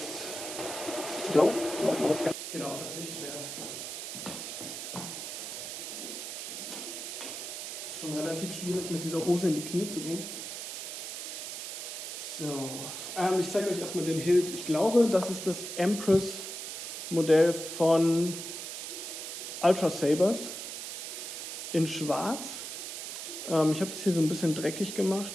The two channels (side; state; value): right; noise; hiss, 7 dB below the sound